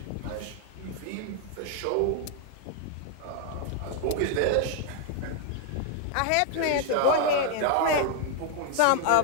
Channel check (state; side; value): different; both; correlation 0.00